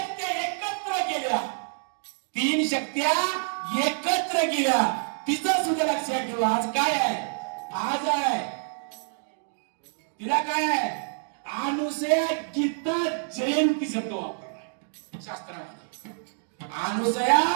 एकत्र केल्या तिचं सुद्धा लक्षात ठेवा. आज काय आहे आज आहे तिला काय आहे अनुसया गीता जयंती शब्द वापरलाय शास्त्रामध्ये. अनुसया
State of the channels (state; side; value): silent; left; digital silence